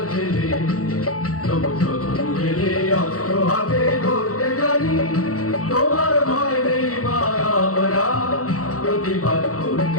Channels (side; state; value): right; late; 0.65 ms